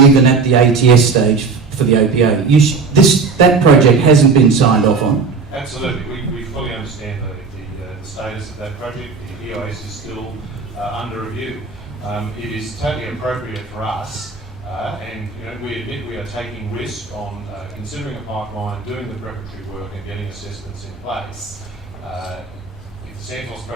even at the ATS stage for the APA? That project hasn't been signed off on. Absolutely. We fully understand the status of that project. The EIS is still under review. It is totally appropriate for us, and we admit we are taking risk on considering a pipeline, doing the preparatory work and getting assessments in place. If the Santos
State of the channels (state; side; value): quieter; left; 4.7 dB